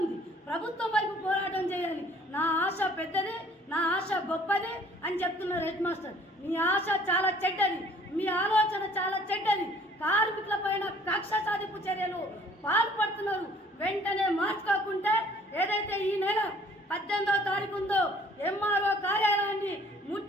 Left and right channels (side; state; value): both; normal; correlation 0.56